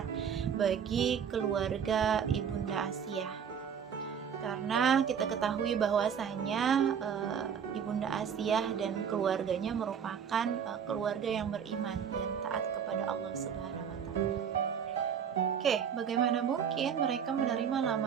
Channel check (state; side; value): quieter; left; 7.6 dB